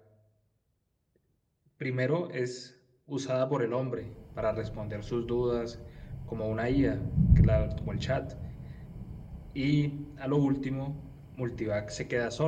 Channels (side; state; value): both; identical; correlation 1.00